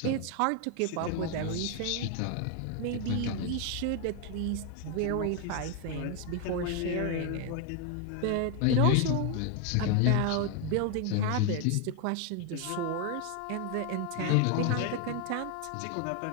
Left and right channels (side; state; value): both; different; correlation 0.01